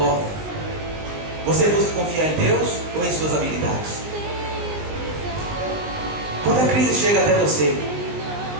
você busca confiar em Deus ou em suas habilidades? Quando a crise chega até você,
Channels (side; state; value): left; late; 19 ms